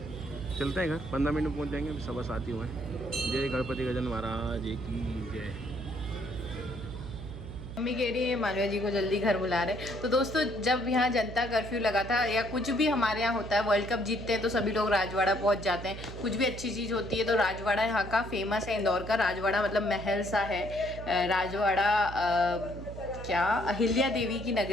चलते हैं घर, 15 मिनट में पहुँच जाएंगे। 7:15 ही हुए हैं। जय गणपति गजानन महाराज की जय। मम्मी कह रही है मालविया जी को जल्दी घर बुला रहे। तो दोस्तों जब यहाँ जनता कर्फ्यू लगा था, या कुछ भी हमारे यहाँ होता है, वर्ल्ड कप जीतते हैं तो सभी लोग राजवाड़ा पहुँच जाते हैं। कुछ भी अच्छी चीज़ होती है तो राजवाड़ा यहाँ का फेमस है। इंदौर का राजवाड़ा मतलब महल सा है। राजवाड़ा क्या अहिल्या देवी की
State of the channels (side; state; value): right; noise; hum, 10 dB below the sound